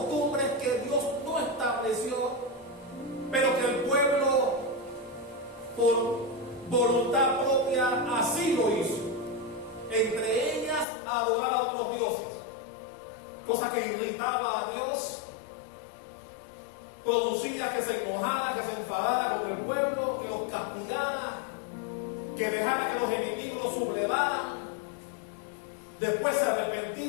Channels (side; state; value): right; drops out; at 10.9 s